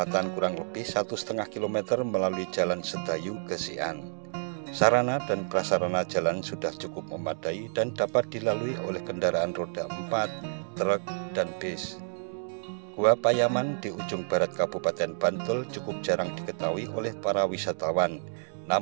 kurang lebih 1,5 km melalui Jalan Sedayu ke Sian. Sarana dan prasarana jalan sudah cukup memadai dan dapat dilalui oleh kendaraan roda 4, truk, dan bis. Gua Payaman di ujung barat Kabupaten Bantul cukup jarang diketahui oleh para wisatawan.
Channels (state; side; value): silent; left; digital silence